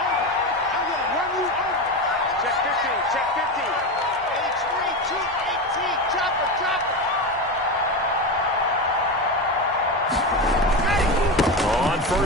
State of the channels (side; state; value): both; normal; correlation 0.18